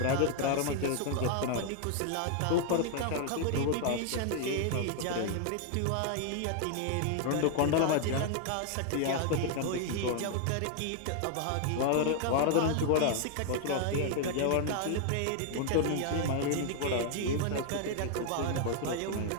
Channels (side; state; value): both; different; correlation 0.00